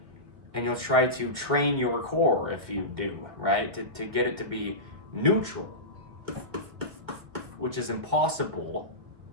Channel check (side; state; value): left; late; 1.9 ms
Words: and you'll try to train your core, if you do, right, to get it to be neutral, which is impossible